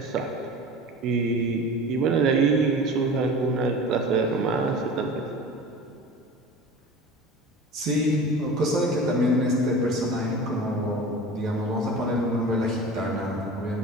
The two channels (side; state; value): both; normal; correlation 0.36